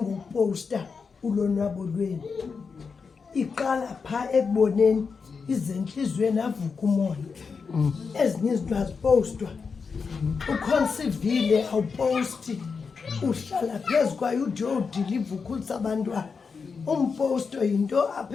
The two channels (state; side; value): quieter; right; 5.3 dB